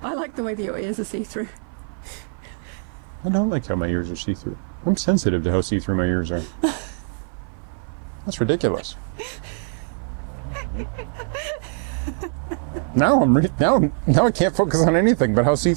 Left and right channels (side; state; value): left; silent; 56 dB below the other